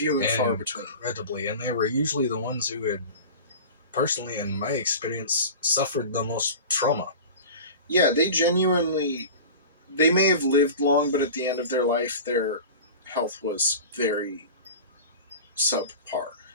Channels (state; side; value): inverted; both; correlation -0.34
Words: and far between. Incredibly, and they were usually the ones who had, personally, in my experience, suffered the most trauma. Yeah, they may have lived long, but at the end of their life, their health was very subpar.